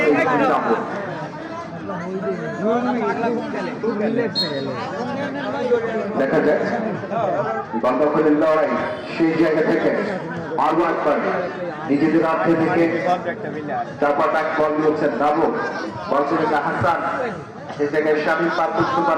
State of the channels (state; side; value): identical; both; correlation 1.00